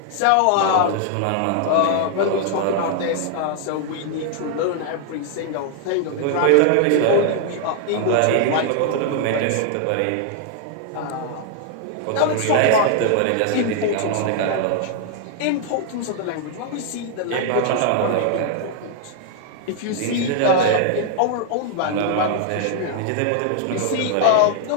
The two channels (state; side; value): different; both; correlation 0.00